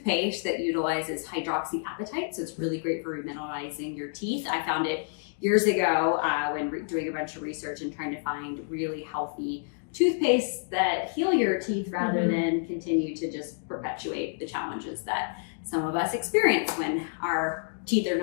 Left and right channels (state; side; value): silent; right; digital silence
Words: that utilizes hydroxyapatite, so it's really great for remineralizing your teeth. I found it years ago when doing a bunch of research and trying to find really healthy toothpaste that heal your teeth rather than continue to just perpetuate the challenges that some of us experience when our teeth are